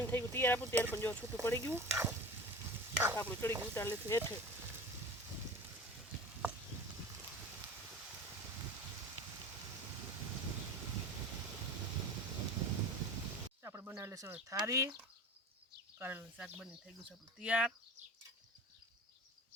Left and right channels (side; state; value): both; normal; correlation 0.35